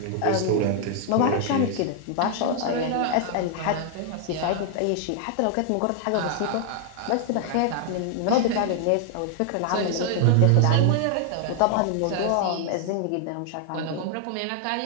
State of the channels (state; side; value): different; both; correlation 0.00